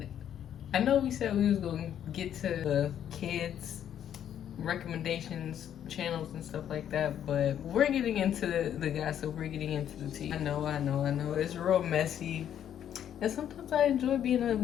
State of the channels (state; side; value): quieter; right; 9.9 dB